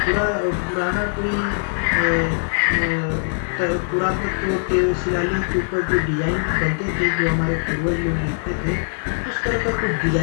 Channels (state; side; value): silent; right; digital silence